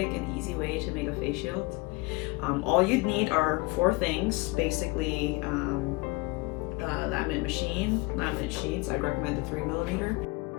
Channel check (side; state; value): right; quieter; 25.5 dB